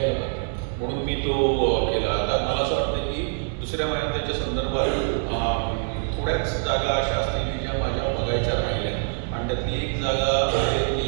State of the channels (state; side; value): silent; left; digital silence